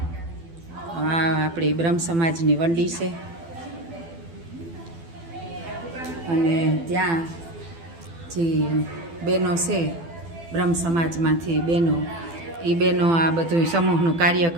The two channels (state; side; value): late; left; 12 ms